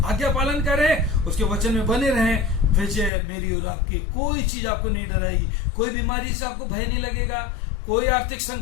आज्ञा पालन करें, उसके वचन में बने रहें। विजय मेरी और आपकी, कोई चीज आपको नहीं डराएगी, कोई बीमारी से आपको भय नहीं लगेगा, कोई आर्थिक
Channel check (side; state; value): right; drops out; at 3.1 s